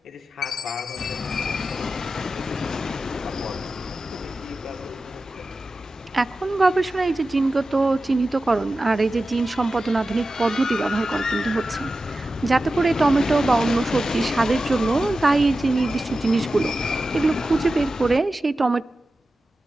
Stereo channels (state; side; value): normal; both; correlation 0.93